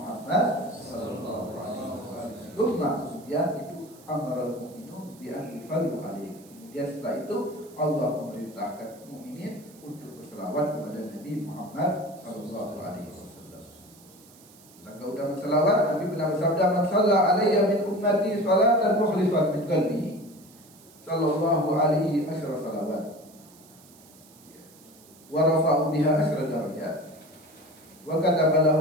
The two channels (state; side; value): noise; right; hiss, 24 dB below the sound